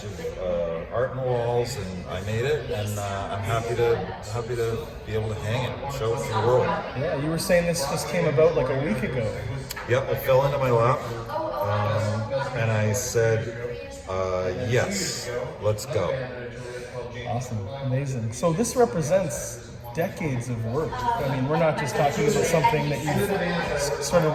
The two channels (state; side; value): identical; both; correlation 1.00